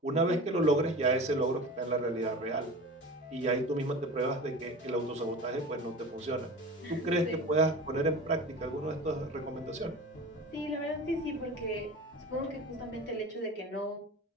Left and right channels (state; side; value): normal; both; correlation 0.34